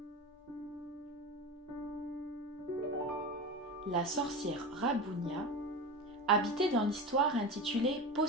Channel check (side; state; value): both; normal; correlation 0.26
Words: La sorcière Rabounia habitait dans l'histoire intitulée